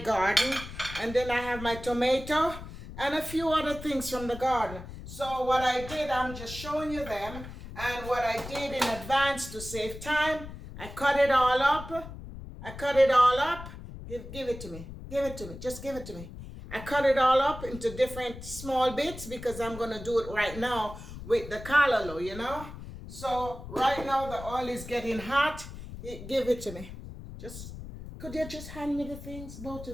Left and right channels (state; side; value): noise; left; rumble, 12 dB below the sound